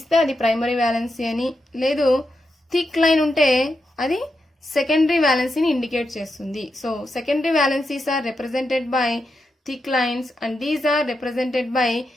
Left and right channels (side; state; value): both; normal; correlation 0.86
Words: అది ప్రైమరీ వ్యాలెన్సీ అని, లేదు థిక్ లైన్ ఉంటే అది సెకండరీ వ్యాలెన్సీని ఇండికేట్ చేస్తుంది. So secondary valencies are represented by thick lines and these are represented by